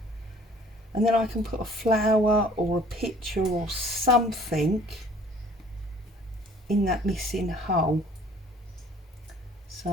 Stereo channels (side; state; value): both; normal; correlation 0.54